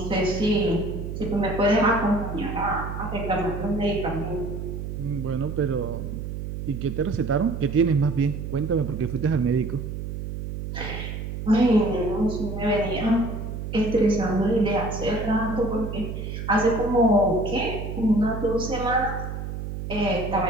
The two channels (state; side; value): noise; right; hum, 6 dB below the sound